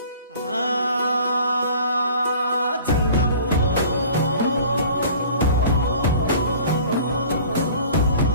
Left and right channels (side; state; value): both; inverted; correlation -0.46